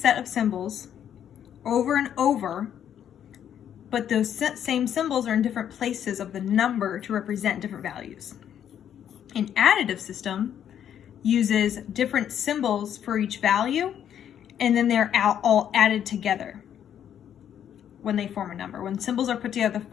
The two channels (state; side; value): quieter; right; 9.6 dB